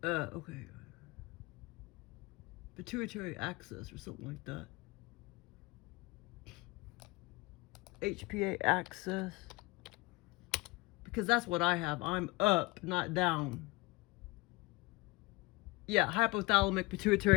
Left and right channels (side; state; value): right; quieter; 23.3 dB